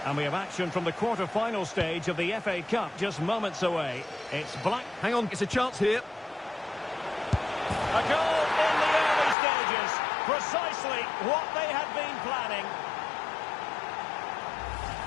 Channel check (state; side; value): drops out; right; at 9.3 s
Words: And we have action from the quarter-final stage of the FA Cup just moments away. It's Black... Hang on, it's a chance here. A goal in the early stages. Precisely what they had been planning.